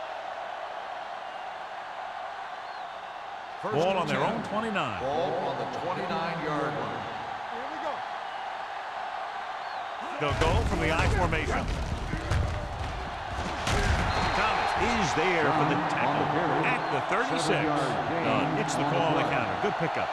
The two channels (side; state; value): both; identical; correlation 1.00